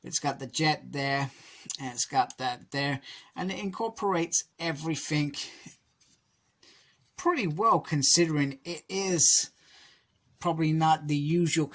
It's got the jet there, and it's got that there, and it incorporates everything pretty well, considering it is probably not the usual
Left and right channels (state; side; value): identical; both; correlation 1.00